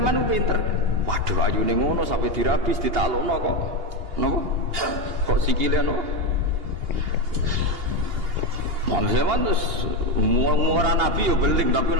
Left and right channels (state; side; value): late; left; 2.8 ms